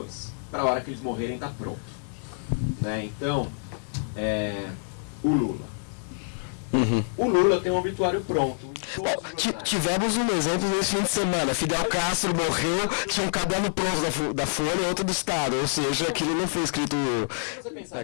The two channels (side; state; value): right; silent; digital silence